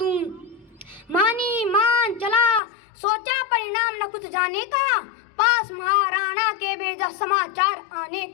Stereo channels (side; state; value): right; drops out; at 2.6 s